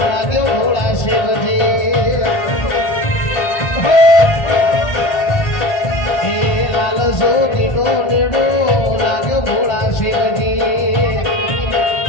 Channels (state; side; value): late; right; 1.3 ms